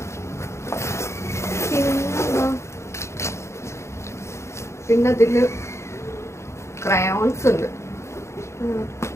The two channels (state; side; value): late; right; 0.13 ms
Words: പിന്നെ അതില് ക്രയോൺസ് ഉണ്ട്.